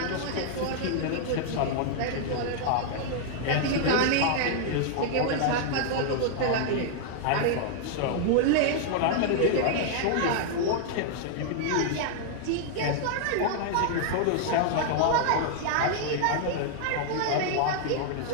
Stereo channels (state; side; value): different; both; correlation -0.01